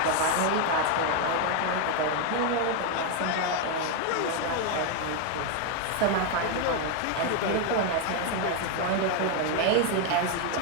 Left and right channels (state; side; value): different; both; correlation 0.01